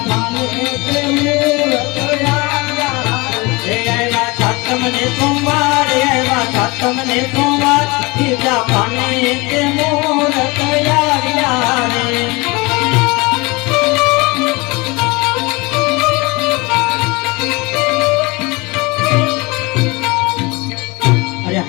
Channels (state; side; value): quieter; right; 25.2 dB